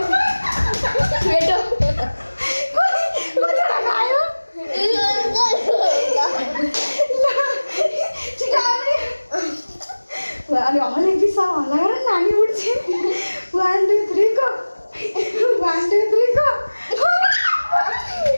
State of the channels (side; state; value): both; inverted; correlation -1.00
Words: बेटो कतिवटा खायो अनि हले पिसा हल्ला गर नानी उठ्छ। 1 2 3 गो 1 2 3 गो।